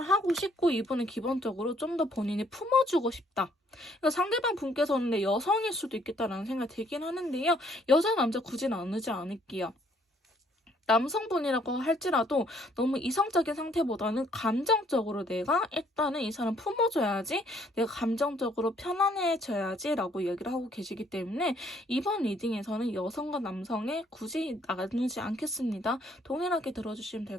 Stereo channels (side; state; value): both; normal; correlation 0.65